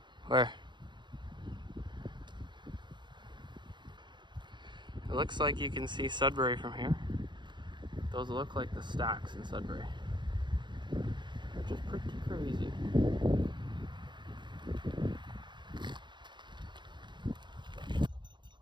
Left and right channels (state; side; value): late; left; 0.22 ms